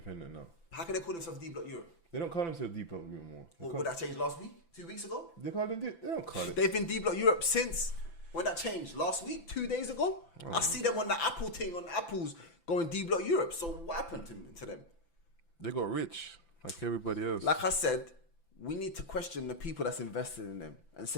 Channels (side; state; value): right; late; 5.9 ms